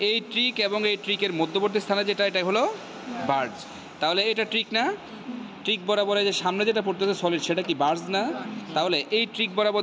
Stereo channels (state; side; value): identical; both; correlation 1.00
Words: এই ট্রিক এবং এই ট্রিকের মধ্যবর্তী স্থানে যেটা, এটা হলো বার্জ। তাহলে এটা ট্রিক না? ট্রিক বরাবর যে সামনে যেটা পড়তেছে সলিড, সেটা কি বার্জ না? তাহলে এই ট্রিক